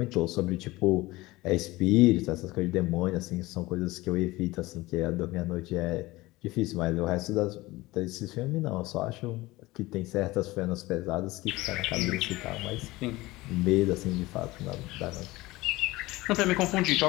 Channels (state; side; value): quieter; right; 19.9 dB